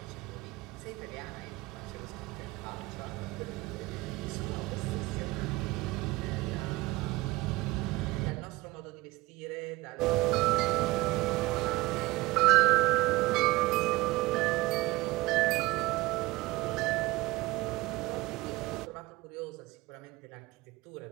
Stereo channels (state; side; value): quieter; left; 20.6 dB